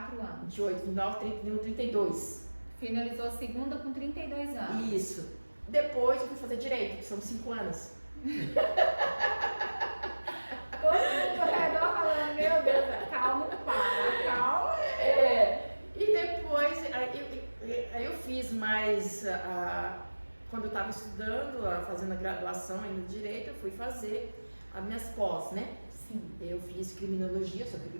anos. 28, 29, 31, 32. Finalizou a segunda com 32 anos. Isso. Depois eu fui fazer direito, que são 5 anos. Todo mundo ao redor falando, meu Deus, calma, calma. E depois, aí eu fiz mais, quando eu estava estudando, fazendo a graduação ainda em Direito, eu fui fazer as minhas pós, né? Sim. Eu fiz criminologia, sou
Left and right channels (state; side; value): inverted; both; correlation -1.00